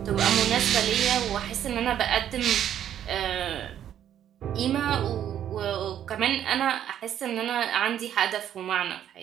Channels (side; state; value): left; quieter; 10.4 dB